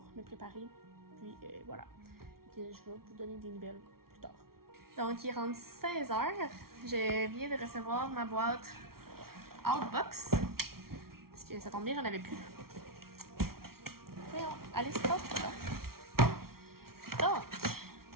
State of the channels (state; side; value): late; left; 0.94 ms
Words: me préparer. Puis voilà. Fait que je vais vous donner des nouvelles plus tard. Donc, il est rendu 16h. Je viens de recevoir ma boîte Outbox. Parce que ça tombe bien, j'en avais plus. Voyons, allez, stop, là. Donc,